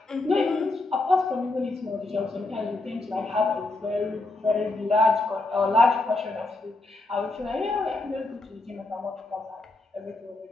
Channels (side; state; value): right; quieter; 3.0 dB